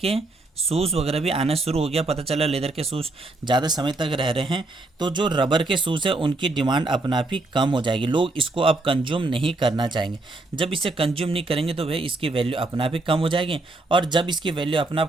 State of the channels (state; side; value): quieter; left; 3.0 dB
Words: शूज़ वगैरह भी आना शुरू हो गया, पता चला लेदर के शूज़ ज़्यादा समय तक रह रहे हैं, तो जो रबर के शूज़ है उनकी डिमांड अपना आप ही कम हो जाएगी। लोग इसको अब कंज्यूम नहीं करना चाहेंगे। जब इसे कंज्यूम नहीं करेंगे तो भाई इसकी वैल्यू अपना आप ही कम हो जाएगी, और जब इसकी वैल्यू अपना